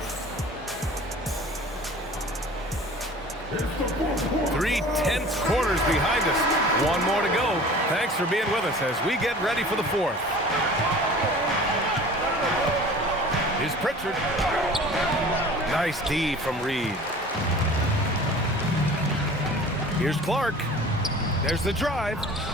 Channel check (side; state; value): both; normal; correlation 0.43